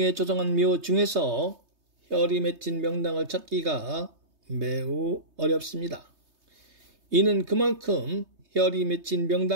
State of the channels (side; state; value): left; late; 3.2 ms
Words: 조성한 묘 중에서 혈이 맺힌 명당을 찾기가 매우 어렵습니다. 이는 그만큼 혈이 맺힌